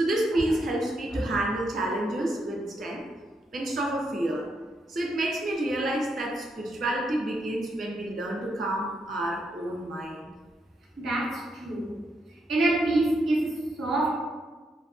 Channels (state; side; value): normal; both; correlation 0.80